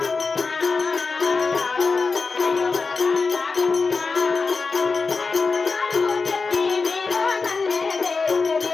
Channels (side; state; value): right; quieter; 4.4 dB